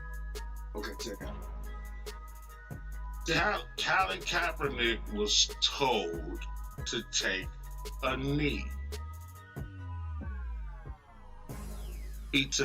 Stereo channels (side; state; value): both; identical; correlation 1.00